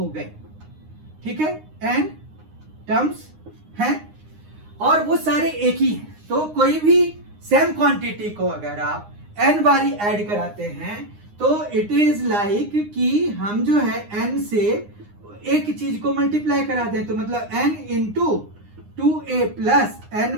गए। ठीक है, n टर्म्स हैं और वो सारे एक ही हैं। तो कोई भी सेम क्वांटिटी को अगर आप n बारी ऐड कराते हैं, तो इट इज लाइक कि हम जो है n से एक चीज को मल्टीप्लाई कराते हैं, तो मतलब n into 2a plus N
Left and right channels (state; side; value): late; left; 9.7 ms